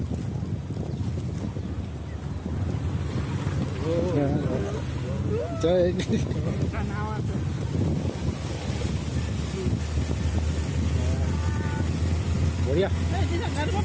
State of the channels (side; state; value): both; identical; correlation 1.00